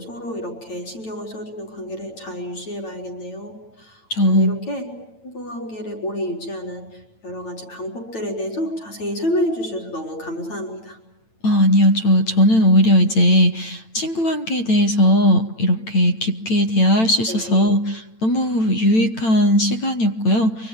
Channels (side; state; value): right; late; 9.0 ms